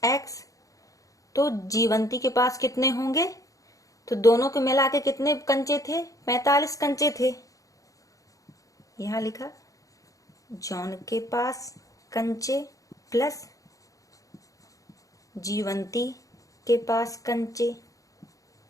x। तो जीवंती के पास कितने होंगे? तो दोनों के मिला के कितने कंचे थे? 45 कंचे थे। यहां लिखा जॉन के पास कंचे प्लस जीवंती के पास कंचे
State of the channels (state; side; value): late; right; 0.16 ms